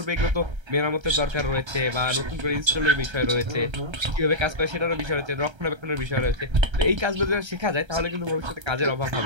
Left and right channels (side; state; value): left; late; 1.3 ms